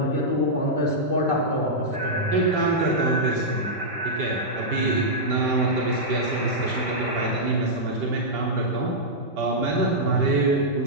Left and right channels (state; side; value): late; left; 5.1 ms